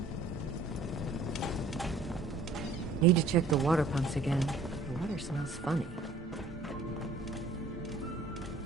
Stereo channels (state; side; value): quieter; left; 3.4 dB